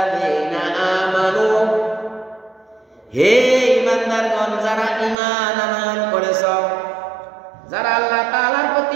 আমানু, হে ঈমানদারগণ, যারা ঈমান আনয়ন করেছ, যারা আল্লাহ তাআলার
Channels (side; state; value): left; drops out; at 5.2 s